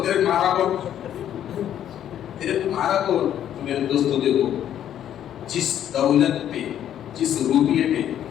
تیرے مارا کو، تیرے کو مارا کو. میرے دوستوں دیکھو جس دولت پہ، جس روپیے پہ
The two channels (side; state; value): right; quieter; 10.6 dB